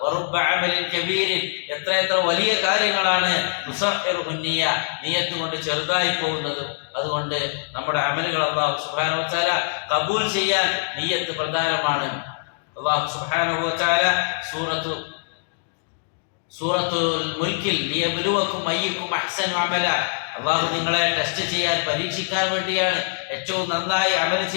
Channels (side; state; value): right; silent; digital silence